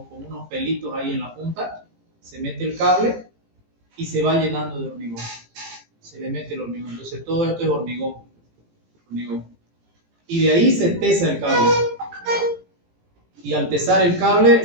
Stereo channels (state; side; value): late; left; 18 ms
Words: unos pelitos ahí en la punta. Se mete el cable y se va llenando de hormigón. Se le mete el hormigón. Entonces todo esto es hormigón. Y de ahí se tesa el cable. Y al tesar el cable